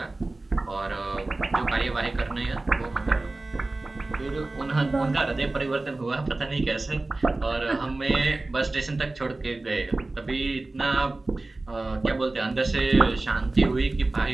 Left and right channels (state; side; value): quieter; left; 3.1 dB